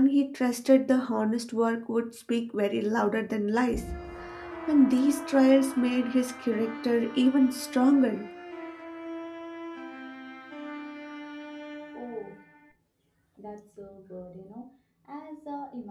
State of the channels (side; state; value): both; identical; correlation 1.00